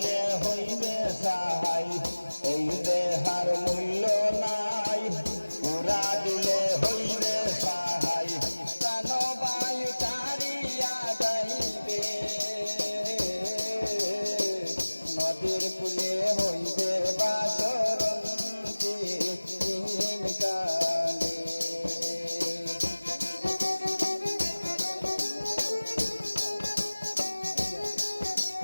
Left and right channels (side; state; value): both; inverted; correlation -1.00